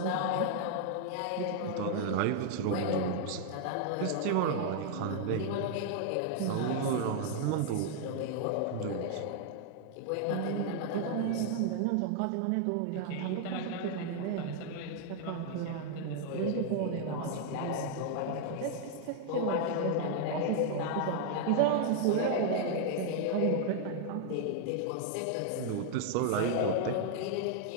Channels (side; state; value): both; different; correlation 0.00